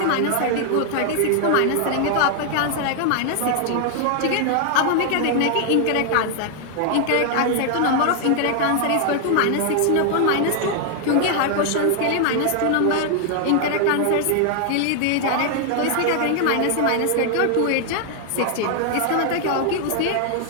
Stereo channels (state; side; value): different; both; correlation 0.00